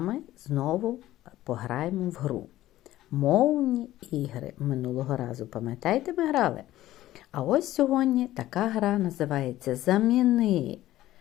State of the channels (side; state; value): right; quieter; 14.8 dB